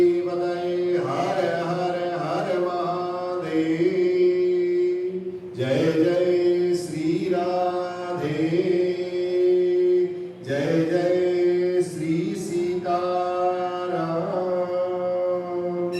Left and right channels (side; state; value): both; identical; correlation 1.00